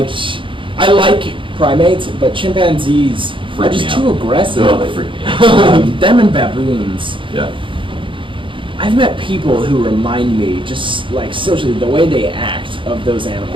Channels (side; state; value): left; late; 0.25 ms